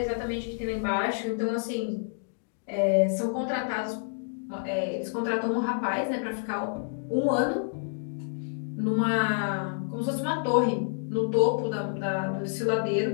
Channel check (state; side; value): silent; right; digital silence